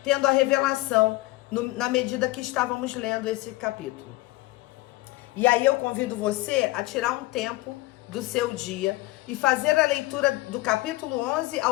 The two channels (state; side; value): quieter; right; 19.6 dB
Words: tendo a revelação na medida que estávamos lendo esse capítulo. E aí eu convido você a tirar um tempo do seu dia e fazer a leitura do capítulo 11